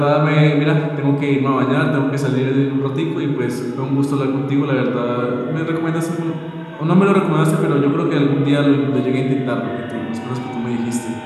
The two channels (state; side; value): identical; both; correlation 1.00